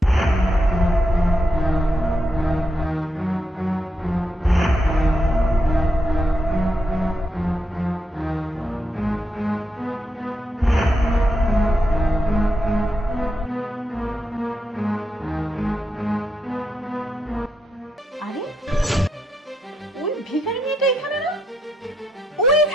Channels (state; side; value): normal; both; correlation 0.82